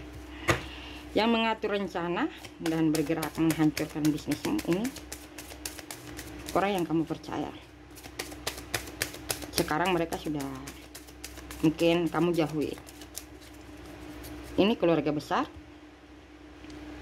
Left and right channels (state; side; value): identical; both; correlation 1.00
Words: Yang mengatur rencana dan bergerak menghancurkan bisnismu ini orang yang kamu percaya. Sekarang mereka sudah mungkin kamu jauhi. Ini keluarga besar,